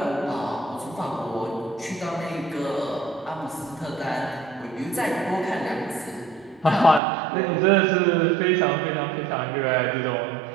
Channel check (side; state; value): left; drops out; at 7.0 s